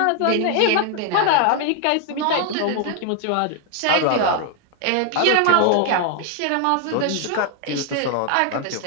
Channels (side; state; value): both; different; correlation 0.00